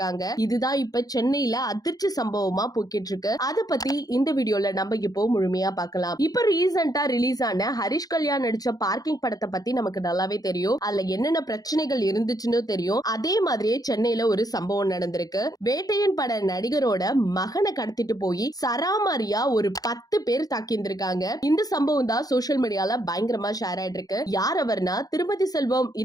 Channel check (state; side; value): late; right; 0.18 ms